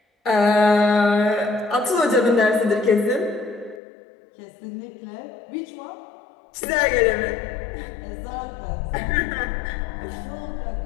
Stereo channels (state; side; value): drops out; right; at 3.8 s